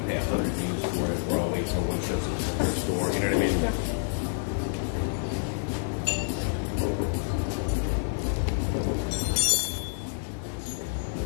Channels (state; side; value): silent; right; digital silence